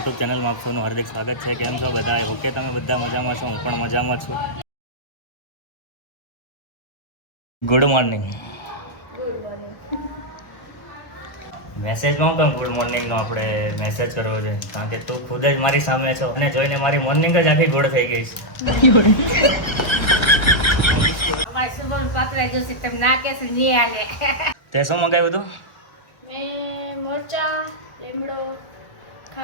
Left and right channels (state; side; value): late; right; 1.3 ms